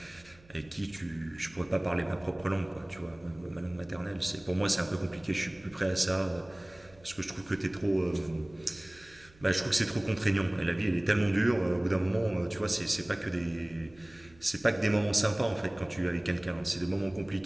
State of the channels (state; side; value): noise; right; hum, 26 dB below the sound